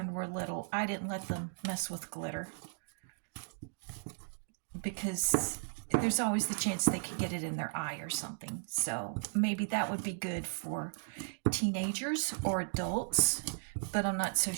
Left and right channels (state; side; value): silent; left; digital silence